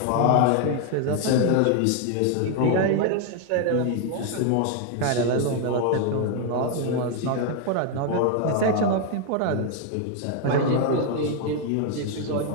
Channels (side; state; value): both; different; correlation 0.01